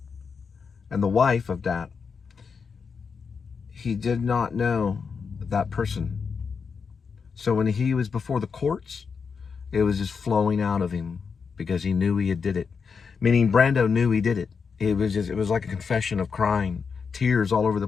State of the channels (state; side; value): quieter; right; 5.7 dB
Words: and the wife of Dat, he did not know that person. So when he was before the courts, it was just flowing out of him because he knew he had did it. Meaning Brando knew he did it. It was like a confession of crying, tears all over the